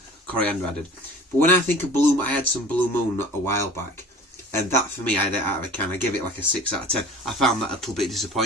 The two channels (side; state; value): both; normal; correlation 0.43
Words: coriander added. But when I think of I had some Blue Moon a while back, and that for me, I give it like a 6 out of 10. I found that a little bit